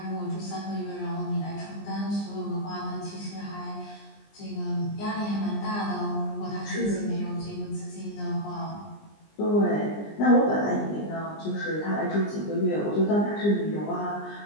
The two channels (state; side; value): late; right; 20 ms